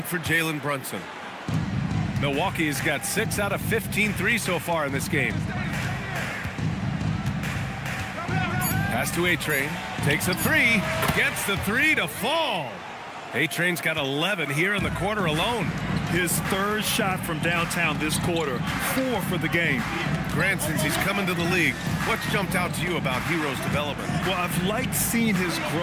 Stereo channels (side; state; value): both; identical; correlation 1.00